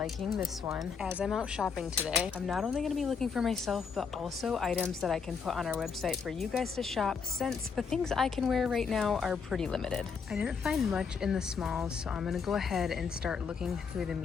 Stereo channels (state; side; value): quieter; right; 5.9 dB